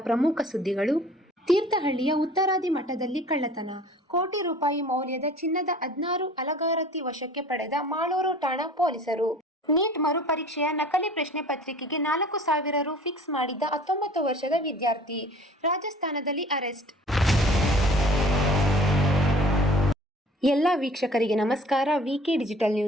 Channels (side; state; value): both; normal; correlation 0.48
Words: ಪ್ರಮುಖ ಸುದ್ದಿಗಳು. ತೀರ್ಥಹಳ್ಳಿಯ ಉತ್ತರಾದಿ ಮಠದಲ್ಲಿ ಕಳ್ಳತನ, ಕೋಟಿ ರೂಪಾಯಿ ಮೌಲ್ಯದ ಚಿನ್ನದ 16 ಅಲಗಾರತಿ ವಶಕ್ಕೆ ಪಡೆದ ಮಾಳೂರು ಠಾಣಾ ಪೊಲೀಸರು. ನೀಟ್ ಮರುಪರೀಕ್ಷೆಯ ನಕಲಿ ಪ್ರಶ್ನೆ ಪತ್ರಿಕೆಗೆ 4,000 ರು ಫಿಕ್ಸ್ ಮಾಡಿದ್ದ 19 ವರ್ಷದ ವಿದ್ಯಾರ್ಥಿ ರಾಜಸ್ಥಾನದಲ್ಲಿ ಅರೆಸ್ಟ್. ಎಲ್ಲ ವೀಕ್ಷಕರಿಗೆ ನಮಸ್ಕಾರ. ವಿಕೆ ಡಿಜಿಟಲ್